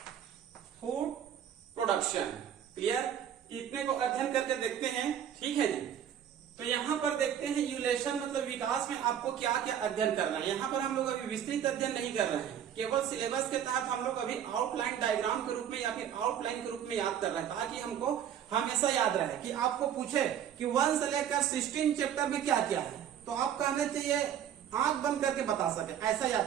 food production. Clear. इतने को अध्ययन करके देखते हैं। ठीक है जी। तो यहाँ पर देखते हैं इवोल्यूशन मतलब विकास में आपको क्या क्या अध्ययन करना है। यहाँ पर हम लोग अभी विस्तृत अध्ययन नहीं कर रहे हैं, केवल सिलेबस के तहत हम लोग अभी आउटलाइन डायग्राम के रूप में या फिर आउटलाइन के रूप में याद कर रहे हैं, ताकि हमको हमेशा याद रहे कि आपको पूछे कि 1 से लेकर 16 चैप्टर में क्या क्या है तो आप कहने चाहिए आंख बंद करके बता सके, ऐसा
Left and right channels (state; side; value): quieter; left; 9.6 dB